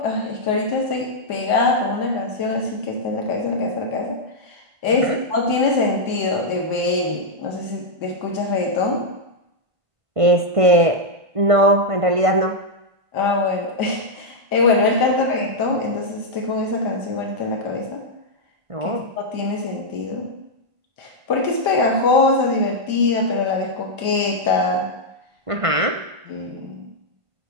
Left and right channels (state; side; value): late; left; 1.5 ms